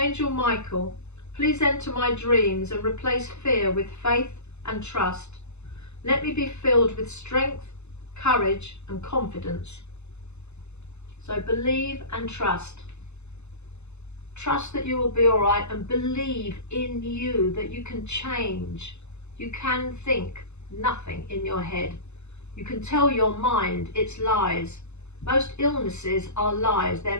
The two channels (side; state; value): right; late; 0.81 ms